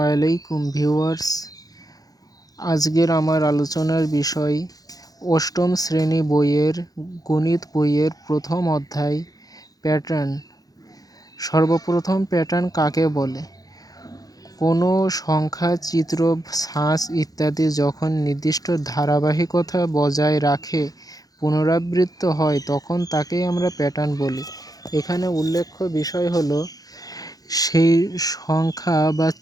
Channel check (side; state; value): right; late; 0.18 ms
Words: ভিউয়ার্স। আজকের আমার আলোচনার বিষয় অষ্টম শ্রেণী বইয়ের গণিত বইয়ের প্রথম অধ্যায় প্যাটার্ন। সর্বপ্রথম প্যাটার্ন কাকে বলে? কোনো সংখ্যা, চিত্র, ছাঁচ ইত্যাদি যখন নির্দিষ্ট ধারাবাহিকতা বজায় রাখে পুনরাবৃত্ত হয় তখন তাকেই আমরা প্যাটার্ন বলি। এখানে উল্লেখ্য বিষয় হলো সেই সংখ্যা বা